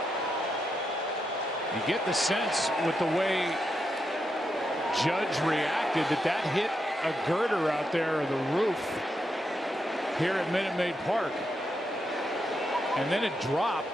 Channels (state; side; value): normal; both; correlation 0.84